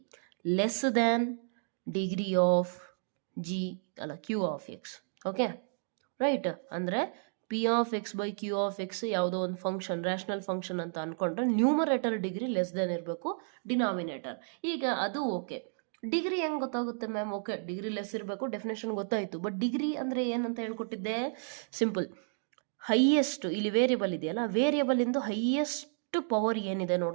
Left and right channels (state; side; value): silent; left; digital silence